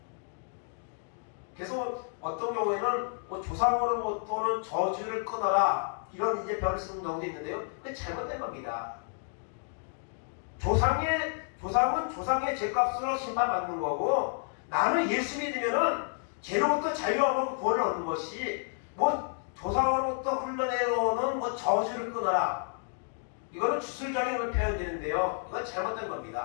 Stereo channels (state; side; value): silent; right; 57 dB below the other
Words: 그래서 어떤 경우에는 뭐 조상으로부터는 저주를 끊어라, 이런 이제 별을 쓰는 경우도 있는데요. 그게 잘못된 겁니다. 조상은 조상의 죄값으로 심판받는 거고, 나는 예수 믿으면은 죄로부터 자유하고 구원을 얻는 것이, 뭐 조상으로부터 흘러내려오는 뭐 저주를 끊어라, 이거는 주술적인 걸 표현되는데요. 이건 잘못된